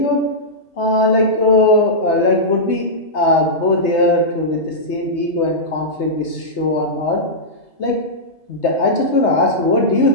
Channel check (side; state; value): right; late; 3.3 ms